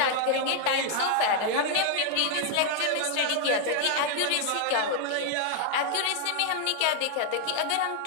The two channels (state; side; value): different; both; correlation 0.00